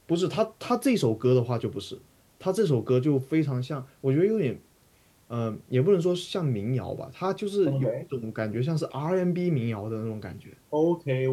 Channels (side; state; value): both; identical; correlation 1.00